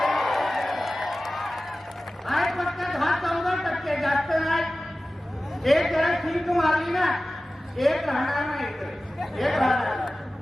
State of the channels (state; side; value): normal; both; correlation 0.96